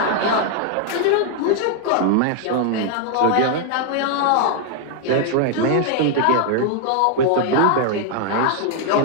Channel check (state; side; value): different; both; correlation 0.00